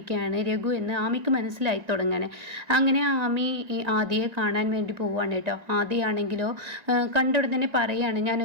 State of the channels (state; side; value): late; left; 1.9 ms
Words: രഘു എന്ന് ആമിക്ക് മനസ്സിലായി തുടങ്ങാൻ. അങ്ങനെ ആമി ആദിയെ കാണാൻ വേണ്ടി പോവുകയാണ് കേട്ടോ. ആദിയാണെങ്കിലോ കണ്ടുടൻ തന്നെ പറയുകയാണ്, ഞാൻ